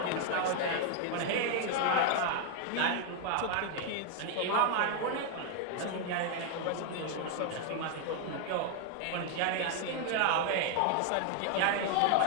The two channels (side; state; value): both; different; correlation 0.00